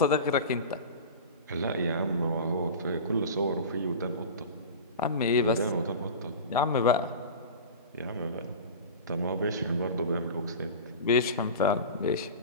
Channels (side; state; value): both; inverted; correlation -0.31